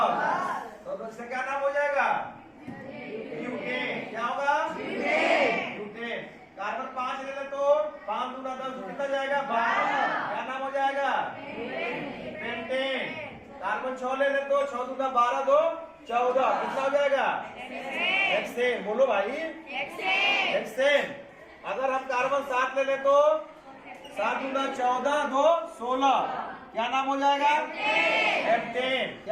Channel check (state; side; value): identical; both; correlation 1.00